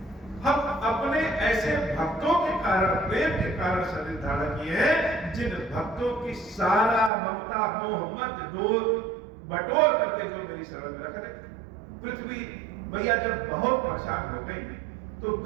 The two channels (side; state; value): left; drops out; at 7.1 s